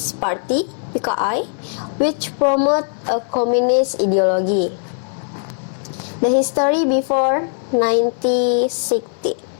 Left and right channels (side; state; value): right; silent; 59 dB below the other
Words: Party, PKI, which promoted a communist ideology. The history before 1960.